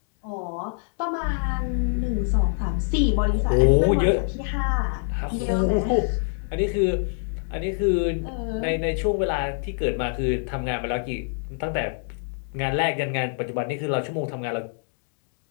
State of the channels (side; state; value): right; silent; digital silence